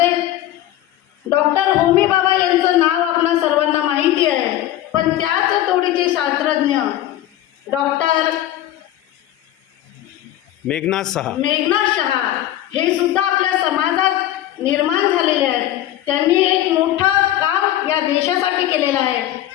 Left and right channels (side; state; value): right; quieter; 13.2 dB